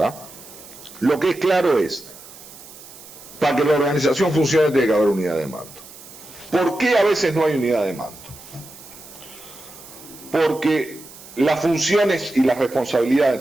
Lo que es claro es, para que la organización funcione tiene que haber unidad de mando. ¿Por qué a veces no hay unidad de mando? Porque las funciones y las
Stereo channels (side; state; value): right; noise; hiss, 18 dB below the sound